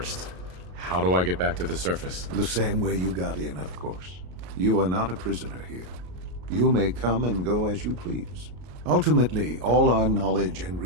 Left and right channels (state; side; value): late; left; 33 ms